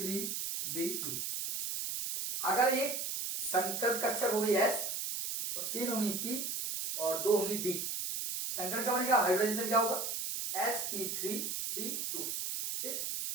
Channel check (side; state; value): right; noise; hiss, 3 dB below the sound